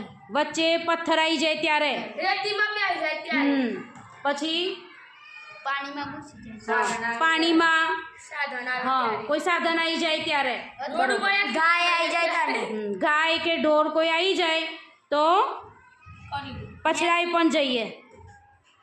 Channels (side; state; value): both; identical; correlation 1.00